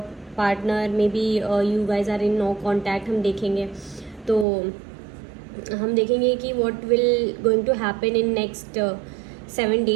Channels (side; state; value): left; drops out; at 4.5 s